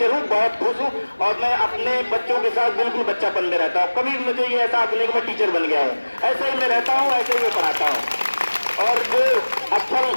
हूँ, बहुत खुश हूँ और मैं अपने बच्चों के साथ बिल्कुल बच्चापन में रहता हूँ। कभी मुझे ये एहसास नहीं कि मैं टीचर बन गया हूँ। ऐसे ही मैं रहता हूँ, ऐसे ही मैं पढ़ाता हूँ। और जो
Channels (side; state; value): both; inverted; correlation -1.00